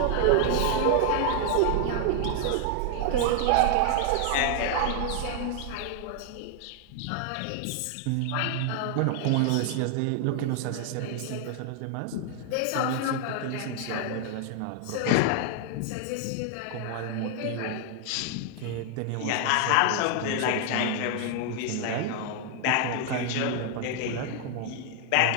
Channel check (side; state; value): both; different; correlation 0.00